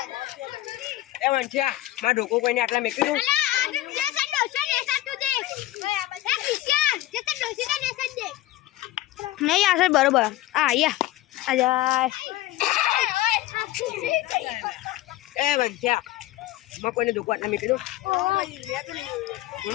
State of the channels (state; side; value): quieter; right; 15.8 dB